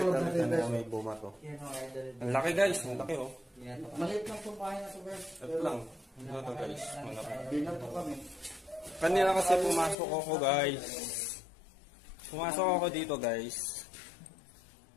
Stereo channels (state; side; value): drops out; right; at 10.0 s